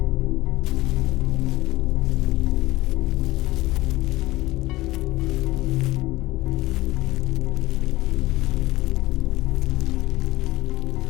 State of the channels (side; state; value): right; quieter; 18.5 dB